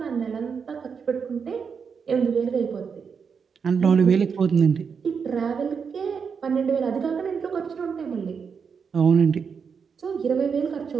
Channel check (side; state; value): left; quieter; 6.2 dB